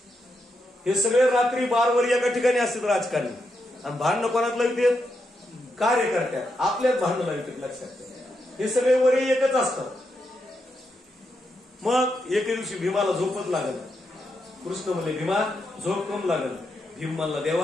हे सगळे रात्री बारवर एका ठिकाणी असतात राजकारणी. आणि भांडणं कोणात लावतात? कार्यकर्त्यात. आपल्याच भांडणं लावतात, लक्षात ठेवा. हे सगळे वरी एकच असतात. मग एके दिवशी भीमाला झोपच लागल. कृष्ण म्हणले, भीमा झोप कम लागल. भीम म्हणला,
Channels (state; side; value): normal; both; correlation 0.83